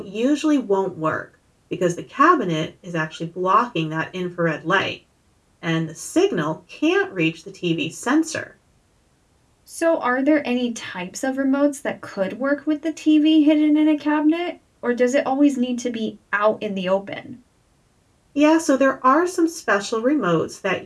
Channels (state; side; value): identical; both; correlation 1.00